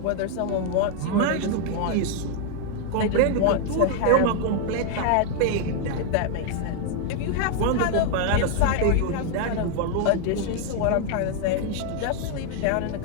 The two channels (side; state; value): both; different; correlation 0.00